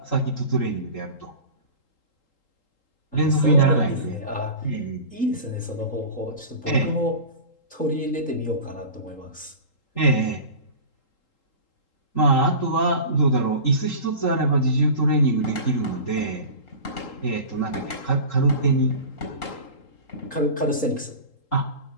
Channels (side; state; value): right; late; 3.8 ms